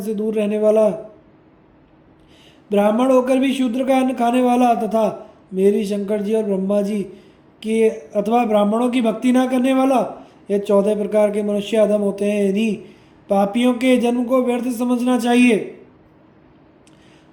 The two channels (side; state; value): both; identical; correlation 1.00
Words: से दूर रहने वाला, ब्राह्मण होकर भी शूद्र का अन्न खाने वाला, तथा मेरी, शंकर जी और ब्रह्मा जी की अथवा ब्राह्मणों की भक्ति ना करने वाला, ये 14 प्रकार के मनुष्य अधम होते हैं। इन्हीं पापियों के जन्म को व्यर्थ समझना चाहिए।